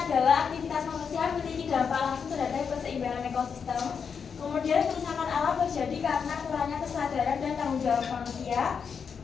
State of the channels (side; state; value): right; quieter; 6.4 dB